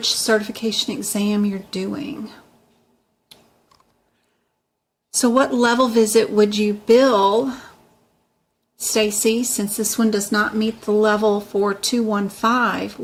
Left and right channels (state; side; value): identical; both; correlation 1.00